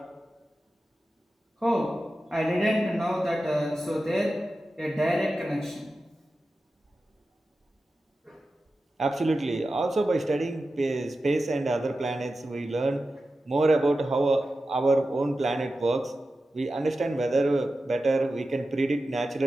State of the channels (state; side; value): normal; both; correlation 0.93